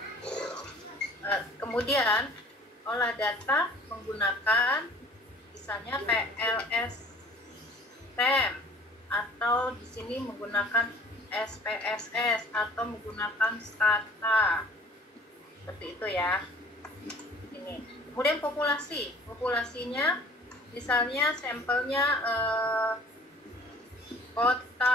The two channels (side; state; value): both; normal; correlation 0.51